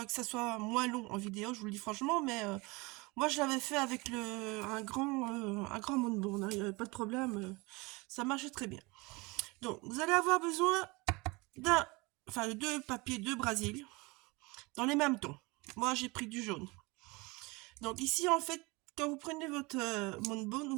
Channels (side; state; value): left; quieter; 25.3 dB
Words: ça soit moins long en vidéo, je vous le dis franchement, mais moi je l'avais fait avec un grand moonboard, hein, il n'y avait pas de problème, ça marchait très bien. Donc, vous allez avoir besoin de deux papiers de Brésil, dans les mêmes tons. Moi j'ai pris du jaune. Donc ici en fait, quand vous prenez votre moonboard,